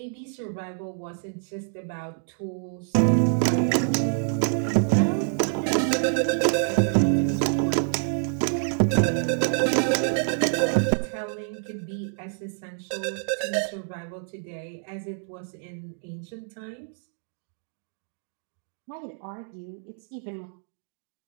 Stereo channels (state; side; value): silent; left; digital silence